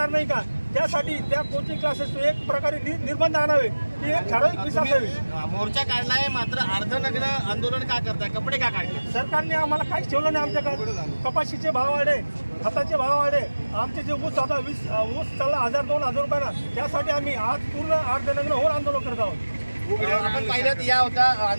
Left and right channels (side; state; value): both; inverted; correlation -1.00